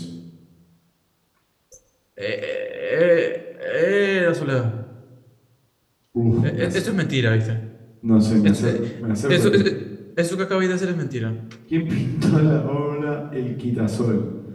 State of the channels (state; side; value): identical; both; correlation 1.00